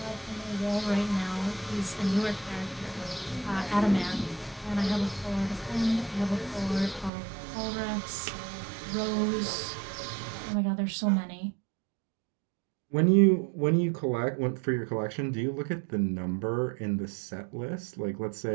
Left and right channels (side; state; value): left; drops out; at 7.1 s